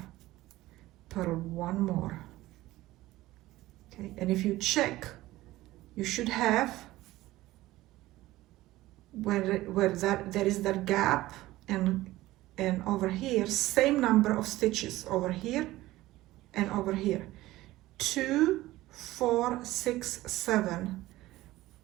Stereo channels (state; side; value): quieter; left; 17.1 dB